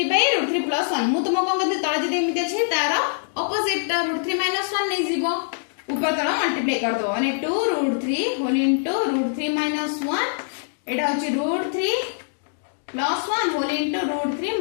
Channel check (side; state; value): right; silent; digital silence